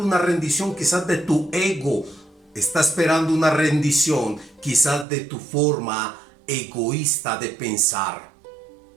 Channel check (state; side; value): drops out; left; at 5.1 s